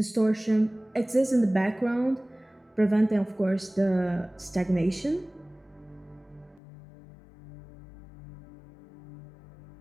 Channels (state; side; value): drops out; right; at 6.6 s